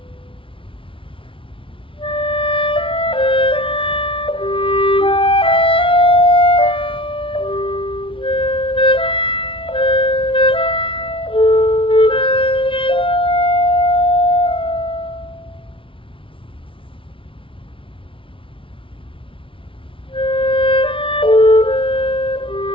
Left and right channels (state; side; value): late; right; 0.25 ms